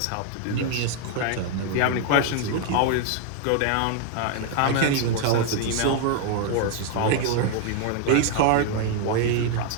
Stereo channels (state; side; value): different; both; correlation 0.00